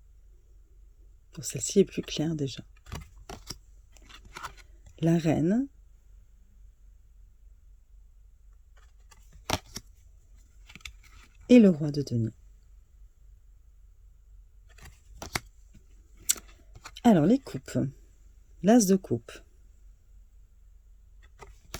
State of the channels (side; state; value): both; identical; correlation 1.00